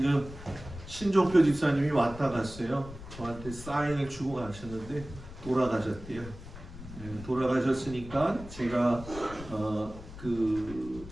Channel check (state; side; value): noise; left; rumble, 14 dB below the sound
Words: 신종표 집사님이 왔다 갔어요. 저한테 사인을 주고 가셨는데 돌아가셨대요. 돌아가셨으니까 제가 그